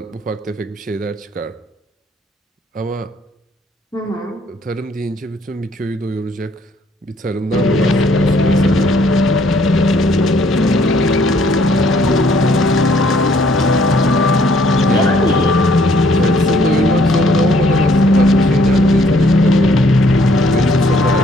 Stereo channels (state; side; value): normal; both; correlation 0.64